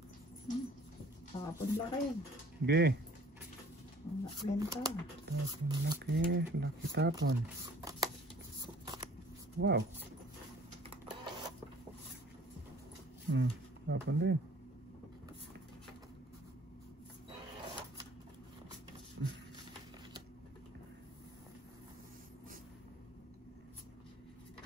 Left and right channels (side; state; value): both; normal; correlation 0.53